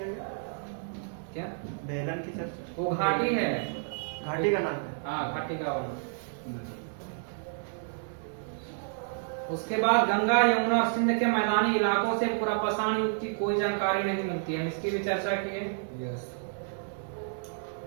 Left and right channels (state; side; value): silent; left; digital silence